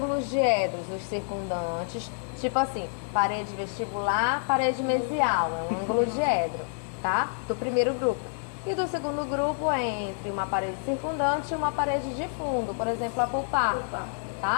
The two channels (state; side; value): silent; right; digital silence